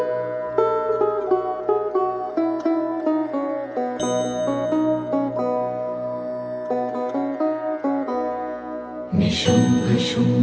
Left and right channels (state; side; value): identical; both; correlation 1.00